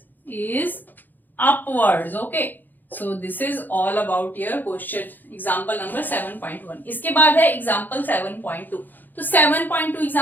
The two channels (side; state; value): right; late; 0.087 ms